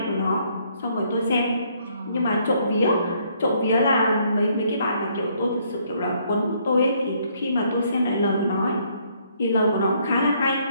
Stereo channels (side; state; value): both; inverted; correlation -0.68